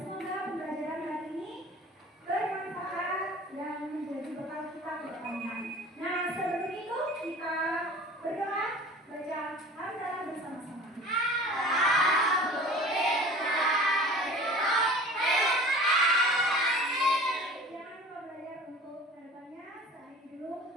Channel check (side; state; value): both; normal; correlation 0.42